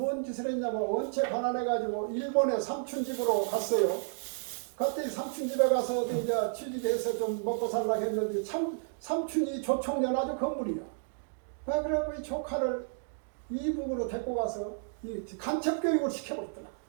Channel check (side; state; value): left; silent; digital silence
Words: 짓을 했냐면 원체 가난해가지고 일본에 삼촌집으로 갔어요. 그때 삼촌집에 가서 이제 취직해서 좀 먹고 살라고 했는데 삼촌이 조총련 아주 건물이야. 그래갖고 이 조카를 이북으로 데리고 가서 이 간첩교육을 시켜버렸더라.